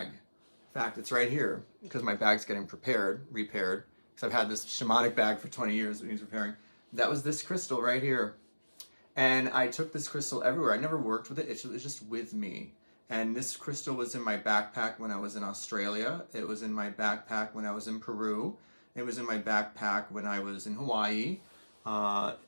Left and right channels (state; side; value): inverted; both; correlation -1.00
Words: In fact, it's right here because my bag's getting repaired, because I've had this shamanic bag for 20 years that needs repairing. That was this crystal right here. And I took this crystal everywhere. I never worked with it. It was just with me. And this crystal was in my backpack when I was in Australia. It was in my backpack when I was in Peru. It was in my backpack when I was in Hawaii,